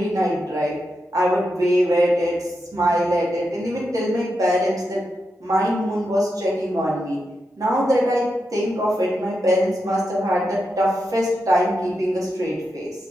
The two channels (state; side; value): normal; both; correlation 0.86